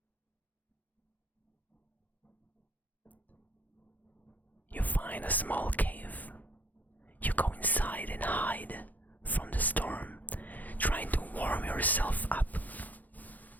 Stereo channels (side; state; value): right; late; 0.081 ms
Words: You find a small cave. You go inside and hide from the storm, trying to warm yourself up.